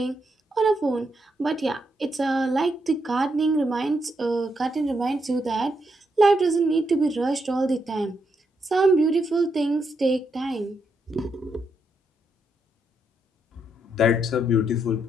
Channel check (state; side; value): normal; both; correlation 0.80